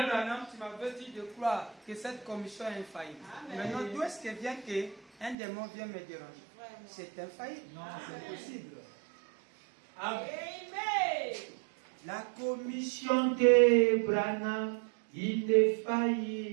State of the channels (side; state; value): left; drops out; at 5.4 s